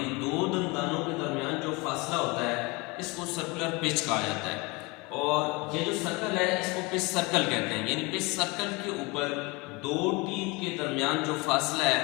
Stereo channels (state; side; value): quieter; right; 26.2 dB